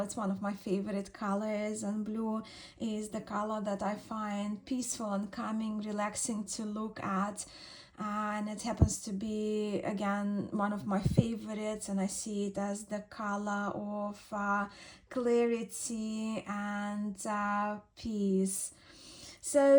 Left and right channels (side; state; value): both; identical; correlation 1.00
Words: it's one of my favorite colors, and blue is the color that I find peaceful and calming, relaxing to look at. And it happens to be, again, one of my favorites, and I see it as the color of clarity and peace.